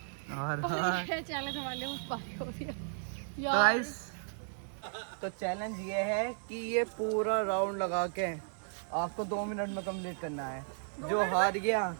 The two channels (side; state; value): left; silent; digital silence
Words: और चैलेंज हमारे मुझ पारी हो रही है तो गाइस, तो चैलेंज ये है कि ये पूरा राउंड लगा के आपको 2 मिनट में कंप्लीट करना है। जो हार गया